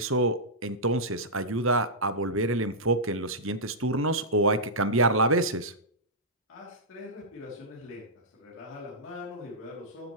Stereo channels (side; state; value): both; normal; correlation -0.12